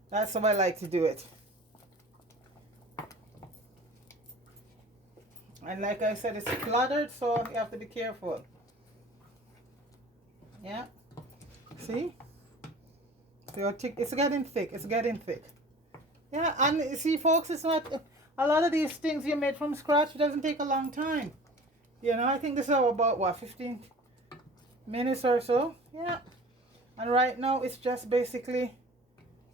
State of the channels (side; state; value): both; normal; correlation 0.42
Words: that's how I like to do it. And like I said, it's cluttered, so you have to be careful. Yeah, see, so it's getting thick. It's getting thick. Yeah, and you see, folks, it's not a lot of these things you made from scratch. It doesn't take a long time. You know, I think this is about what, 15 minutes or so. Yeah, and right now it's just basically